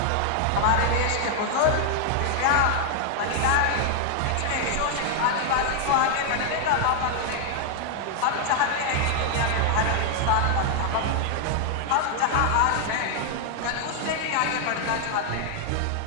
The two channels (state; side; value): different; both; correlation 0.00